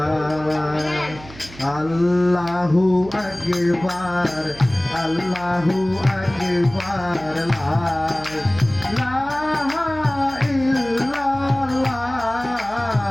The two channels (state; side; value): noise; right; hum, 17 dB below the sound